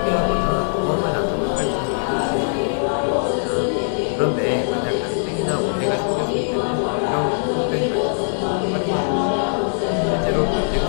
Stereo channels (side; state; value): right; silent; digital silence